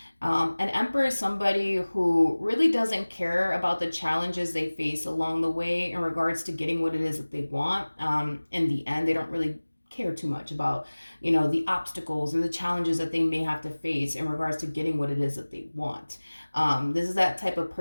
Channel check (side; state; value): both; inverted; correlation -1.00